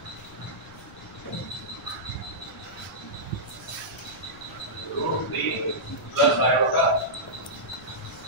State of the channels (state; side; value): noise; left; rumble, 21 dB below the sound